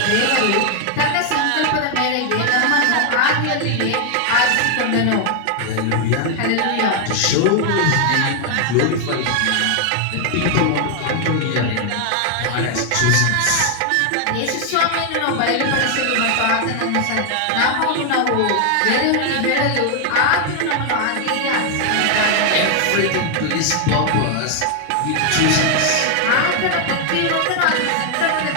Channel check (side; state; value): both; different; correlation 0.00